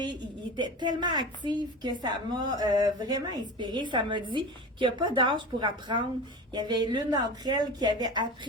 Ils étaient tellement actifs que ça m'a vraiment inspirée. Ça m'a dit qu'il n'y a pas d'âge pour apprendre. Il y avait l'une d'entre elles qui avait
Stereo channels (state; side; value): normal; both; correlation 0.30